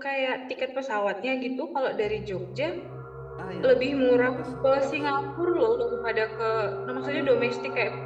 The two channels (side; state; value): both; identical; correlation 1.00